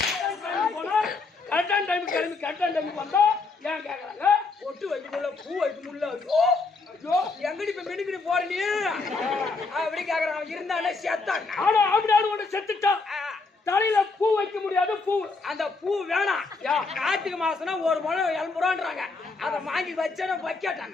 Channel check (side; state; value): right; quieter; 4.0 dB